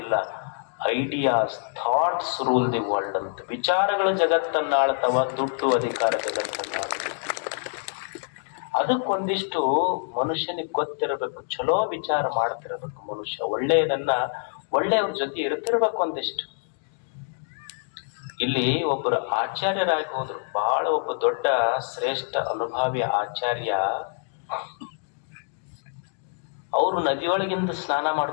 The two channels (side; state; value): right; silent; digital silence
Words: ideas, thoughts rule the world ಅಂತ. ವಿಚಾರಗಳು ಜಗತ್ತನ್ನ ಆಳ್ತಾವ, ದುಡ್ಡು ಅಧಿಕಾರ ಜಗತ್ತನ್ನ ಆಳ್ತಾವ. ಅದಕ್ಕೊಂದಿಷ್ಟು ಮನುಷ್ಯನಿಗೆ ಗೊತ್ತಿರಬೇಕು, ಚಲೋ ವಿಚಾರ ಮಾಡ್ತಿರ್ಬೇಕು ಮನುಷ್ಯ, ಒಳ್ಳೆಯವ್ರ ಜೊತೆ ಇರ್ತಿರ್ಬೇಕು ಒಂದಿಷ್ಟು. ಇಲ್ಲಿ ಒಬ್ಬರು ಆಚಾರ್ಯರಾಗಿ ಹೋದ್ರು, ಬಹಳ ಒಬ್ಬ ದೊಡ್ಡ ಶ್ರೇಷ್ಠ ಅನುಭಾವಿ ಆಚಾರ್ಯ. ಅವರು ನದಿಯೊಳಗಿಂದ ಸ್ನಾನ